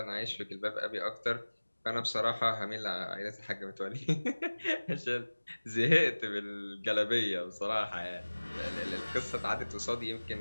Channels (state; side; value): inverted; both; correlation -1.00